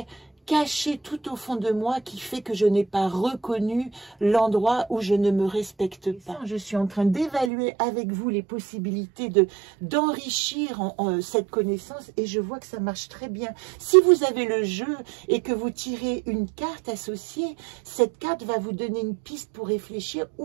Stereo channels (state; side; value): drops out; left; at 7.5 s